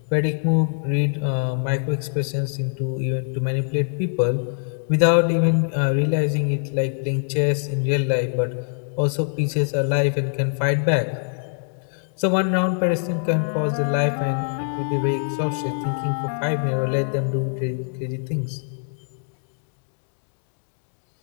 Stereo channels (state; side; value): silent; right; digital silence